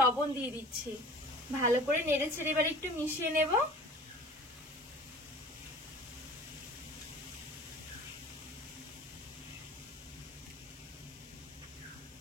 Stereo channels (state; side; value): normal; both; correlation 0.43